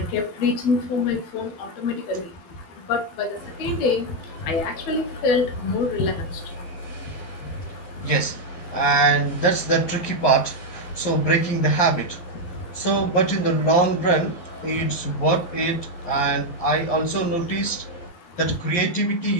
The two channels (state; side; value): late; right; 11 ms